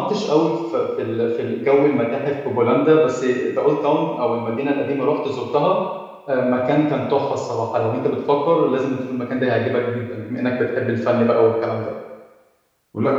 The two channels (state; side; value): identical; both; correlation 1.00